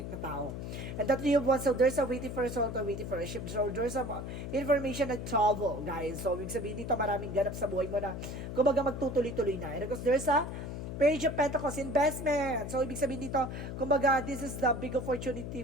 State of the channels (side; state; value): left; noise; hum, 6 dB below the sound